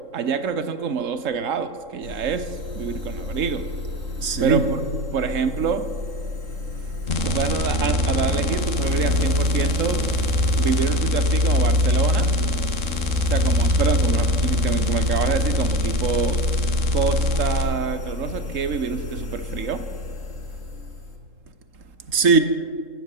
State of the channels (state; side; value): late; left; 3.8 ms